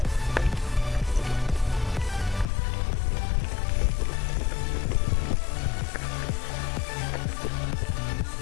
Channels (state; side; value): drops out; right; at 2.5 s